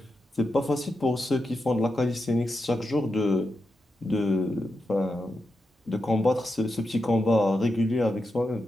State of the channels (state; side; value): normal; both; correlation 0.88